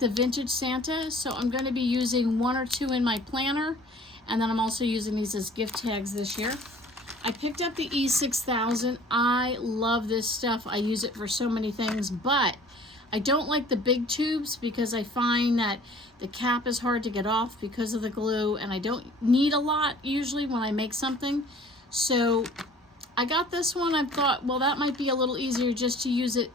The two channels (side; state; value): both; normal; correlation 0.50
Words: vintage Santa, so I'm going to be using 1 or 2 in my planner, and then I'm also using these as gift tags this year. I picked up the E6000. I love this stuff. I use it for so many things, but I don't like the big tubes because I find that the cap is hard to get off because of the glue, and I don't need a lot usually when I make something. So I got this one. I thought, well, that might be a little easier just to use it